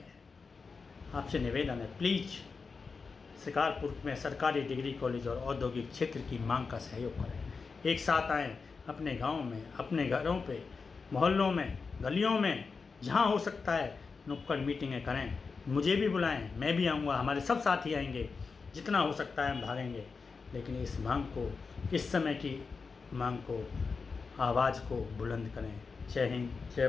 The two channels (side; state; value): right; quieter; 4.8 dB